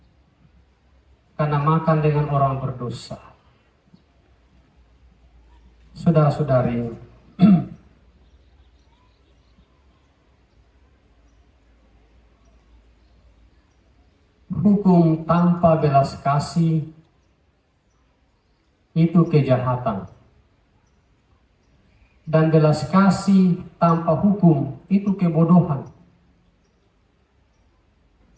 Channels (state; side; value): identical; both; correlation 1.00